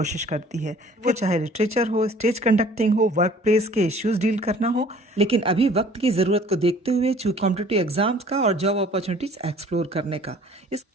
करती है। वो चाहे लिटरेचर हो, स्टेज कंडक्टिंग हो, वर्क प्लेस के इश्यूज डील करना हो। लेकिन अभी वक्त की जरूरत को देखते हुए कॉम्पिटिटिव एग्जाम्स का और जॉब अपॉर्चुनिटीज एक्सप्लोर करने का,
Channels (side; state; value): both; normal; correlation 0.52